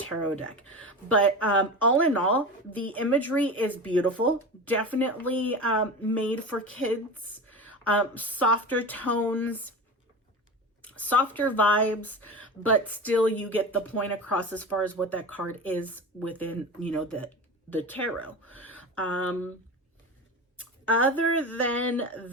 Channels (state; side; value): normal; both; correlation 0.28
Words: deck. But all in all, the imagery is beautiful. Definitely made for kids. Softer tones, softer vibes, but still you get the point across as far as what that card is within, you know, the tarot. Other than